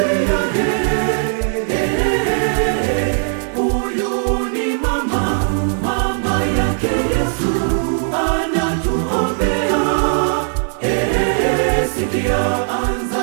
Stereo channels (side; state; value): left; silent; digital silence